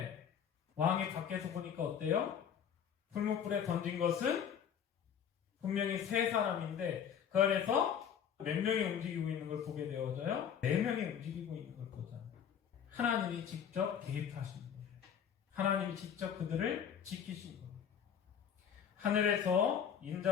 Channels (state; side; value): quieter; right; 8.3 dB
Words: 왕이 밖에서 보니까 어때요? 풀무불에 던진 것은 분명히 세 사람인데 그 안에서 몇 명이 움직이고 있는 걸 보게 되어져요? 4명이 움직이고 있는 걸 보잖아요. 하나님이 직접 개입하신 거예요. 하나님이 직접 그들을 지키신 거예요. 하늘에서